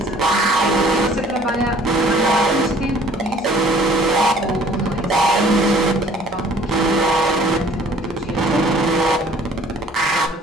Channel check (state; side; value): normal; both; correlation 0.54